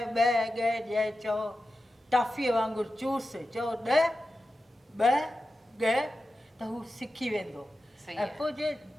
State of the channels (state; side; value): normal; both; correlation 0.92